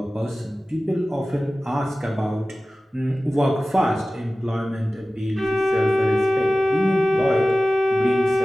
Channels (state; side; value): normal; both; correlation 0.96